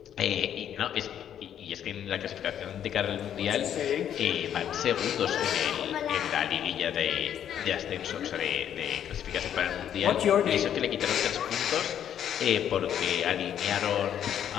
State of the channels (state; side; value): quieter; right; 9.7 dB